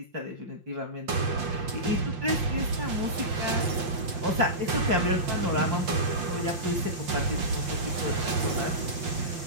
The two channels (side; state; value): left; late; 5.7 ms